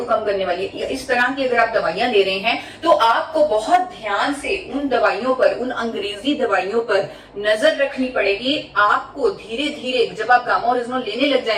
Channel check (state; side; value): identical; both; correlation 1.00